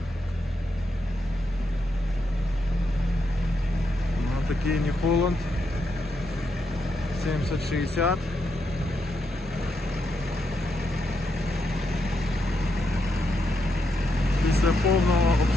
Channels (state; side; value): normal; both; correlation 0.81